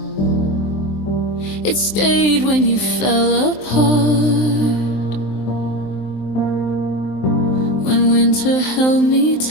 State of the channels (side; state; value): right; late; 23 ms